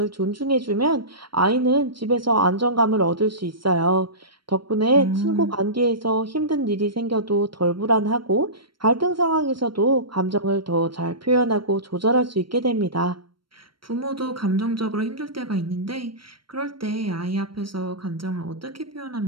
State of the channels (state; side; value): late; left; 0.73 ms